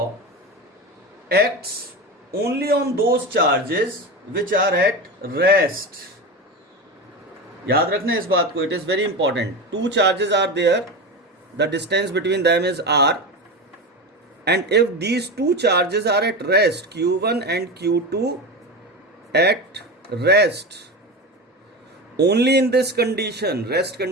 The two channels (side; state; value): both; normal; correlation 0.23